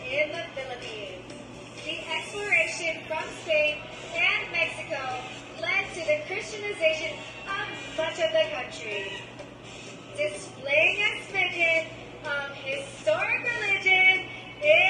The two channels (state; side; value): identical; both; correlation 1.00